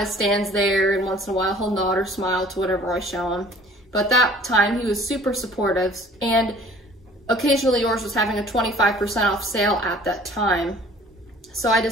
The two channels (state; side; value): normal; both; correlation 0.50